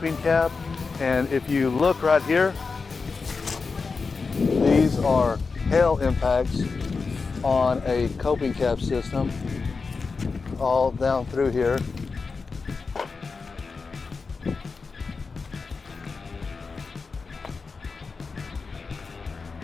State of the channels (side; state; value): right; quieter; 4.6 dB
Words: cap. And if you look right here, these are hail impacts on a coping cap system all down through here.